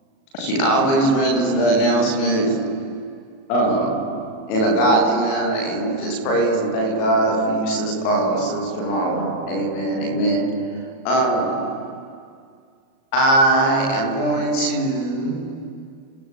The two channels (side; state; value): right; late; 37 ms